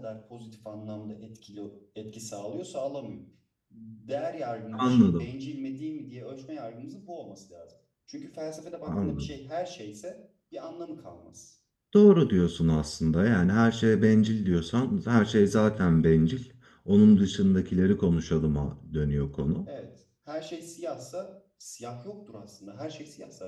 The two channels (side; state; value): both; identical; correlation 1.00